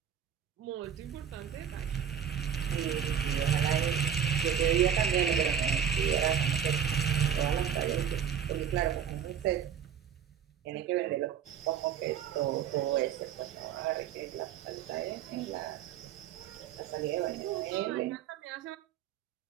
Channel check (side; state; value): left; quieter; 8.4 dB